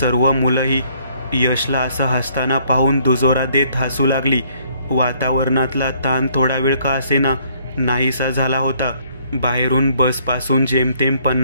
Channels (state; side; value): inverted; both; correlation -0.64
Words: मुलंही यशला असं हसताना पाहून दुजोरा देत हसू लागली. वातावरणातला ताण थोडा वेळ का असेना नाहीसा झाला होता. बाहेरून बसपासून जेमतेम